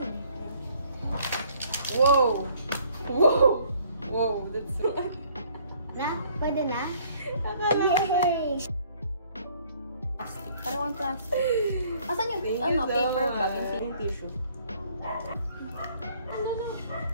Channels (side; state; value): both; inverted; correlation -0.61